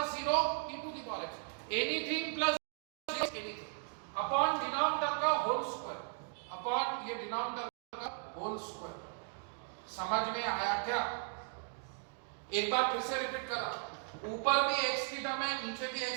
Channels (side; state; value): left; silent; 53 dB below the other